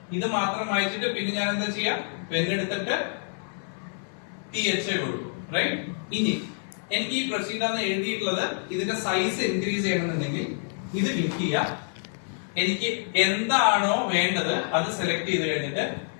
ഇത് മാത്രം വായിച്ചിട്ട് പിന്നെ ഞാൻ എന്താ ചെയ്യാം? പെണ്ണെടുത്തിട്ട് TH കൊടുക്കും. റൈറ്റ്? ഇനി എനിക്ക് ഈ പ്രൊസീഡ് എന്ന് എഴുതിയിട്ടുള്ളത് ഇതിന്റെ സൈസ് ഇൻക്രീസ് ചെയ്യണമെന്നുണ്ടെങ്കിൽ ഇത് ക്ലിക്ക് ചെയ്യാം. എനിക്ക് എന്താണോ വേണ്ടത് അത് സെലക്ട് ചെയ്ത് കഴിഞ്ഞിട്ട്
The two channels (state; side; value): silent; right; 60 dB below the other